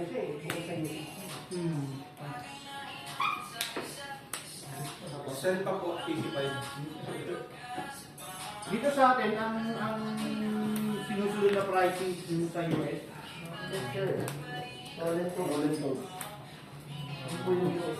siya eh. Bukod sa UC. Send pa po, 85. Dito sa atin, ang sinusunod na pricing yung sa US. Yes, sir. Roland to. Ano po yung US?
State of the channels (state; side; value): identical; both; correlation 1.00